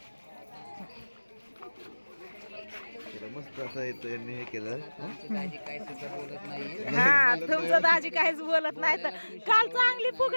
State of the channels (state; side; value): inverted; both; correlation -1.00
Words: मस्त असं येतो यांनी हे केलं. हा तुमचं दाजी काहीच बोलत नाही. तर काल चांगली